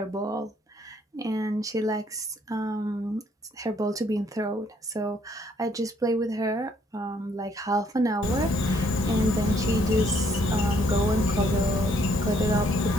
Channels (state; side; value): normal; both; correlation 0.67